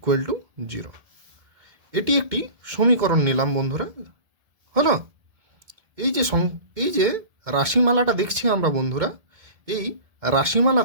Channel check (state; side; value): late; left; 1.7 ms